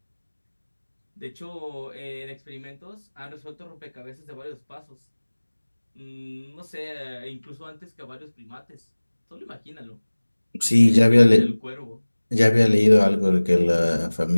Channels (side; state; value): both; inverted; correlation -1.00